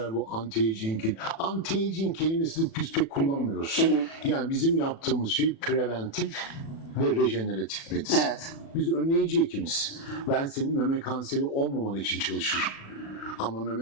bu anti-aging kelimesini biz pek kullanmıyoruz. Yani bizim yaptığımız şey preventif ve rejeneratif medicine. Evet. Biz önleyici hekimiz. Ben senin meme kanseri olmaman için çalışırım. Ama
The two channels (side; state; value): right; late; 36 ms